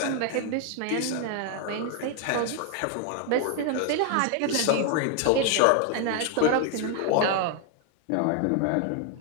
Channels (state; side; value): different; both; correlation 0.00